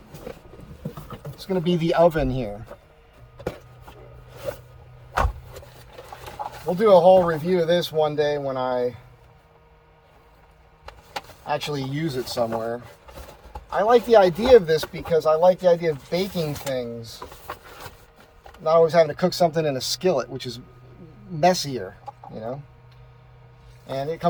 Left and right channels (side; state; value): both; identical; correlation 1.00